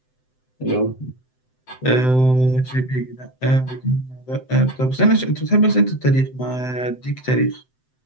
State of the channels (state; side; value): late; right; 7.8 ms